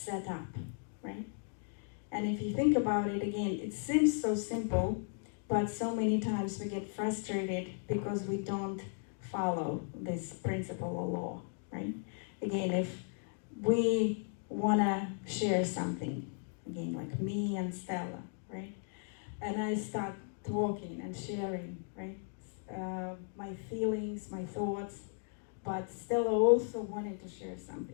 up, right? And if you think about it again, it seems so simple, but so many times we get frustrated because we don't follow this principle or law, right? Again, if we want to share something, again, like me and Stella, right? And I start talking and sharing, right? My feelings, my thoughts, but Stella also wanted to share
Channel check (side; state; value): right; silent; 54 dB below the other